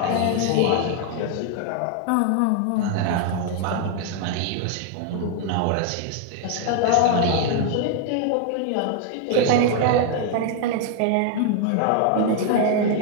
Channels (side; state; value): both; different; correlation 0.00